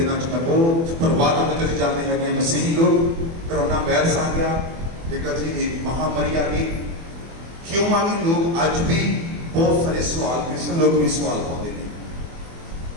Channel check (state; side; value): late; left; 24 ms